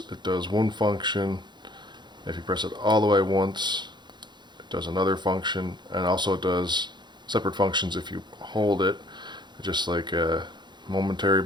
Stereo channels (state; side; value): late; left; 0.21 ms